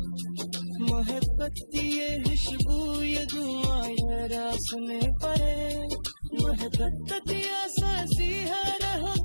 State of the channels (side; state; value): both; inverted; correlation -1.00